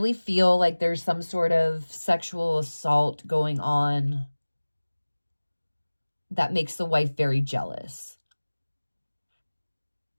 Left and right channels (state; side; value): inverted; both; correlation -1.00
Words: feel like there's some sort of sexual assault going on that makes the wife very jealous.